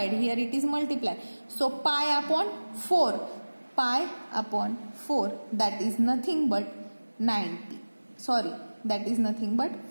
Here it is multiply. So pi upon 4. That is nothing but 90. Sorry, that is nothing but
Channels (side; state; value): both; inverted; correlation -1.00